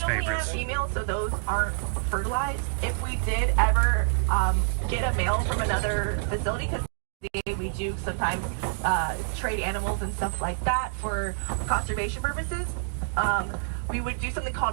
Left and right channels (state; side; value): silent; left; digital silence